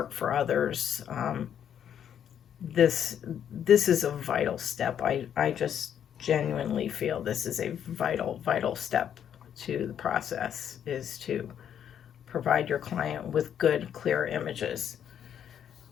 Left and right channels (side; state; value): right; quieter; 9.2 dB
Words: for others. This is a vital step. I just genuinely feel this is a vital step to the process, is to provide your client with good, clear images.